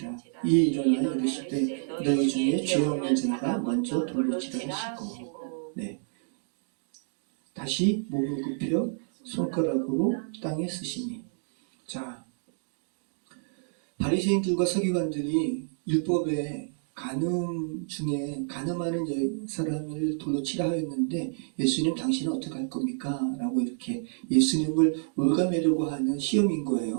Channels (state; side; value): silent; left; digital silence